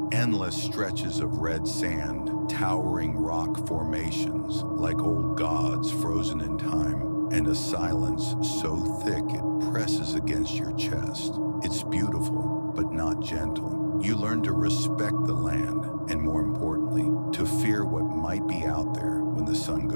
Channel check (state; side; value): inverted; both; correlation -1.00